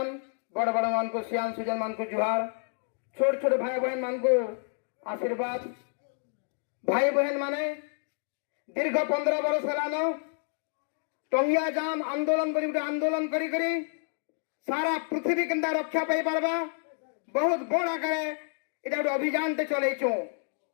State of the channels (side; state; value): right; silent; 58 dB below the other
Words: बड़ बड़ मान को सियान सुजन मान को जुहार छोट छोट भाई बहन मान को आशीर्वाद भाई बहन माने दीर्घ 15 वर्ष है टंगिया जाम आंदोलन आंदोलन करी करी सारा पृथ्वी केंदा रक्षा पाई पारबा बहुत बड़ आकार इटा गोटे अभियान ते चलैछु